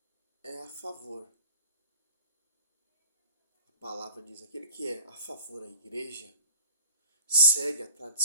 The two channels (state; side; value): inverted; both; correlation -0.47